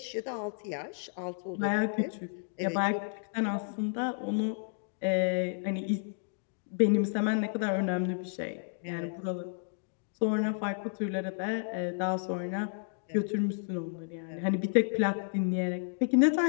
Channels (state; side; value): silent; right; digital silence